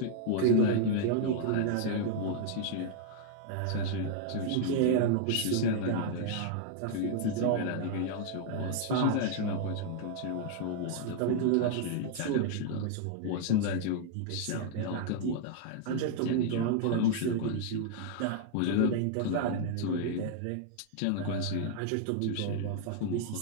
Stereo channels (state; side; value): different; both; correlation -0.01